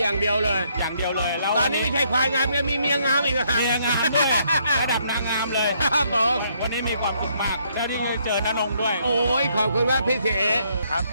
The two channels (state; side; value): inverted; both; correlation -0.70